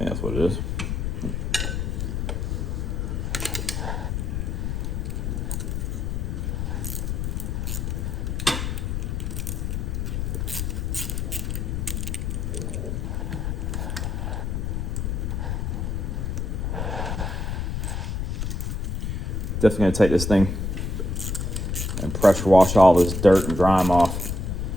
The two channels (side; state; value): left; noise; rumble, 1 dB below the sound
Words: that's what it is. Definitely gonna take this thing and pressure wash all this dirt and grime off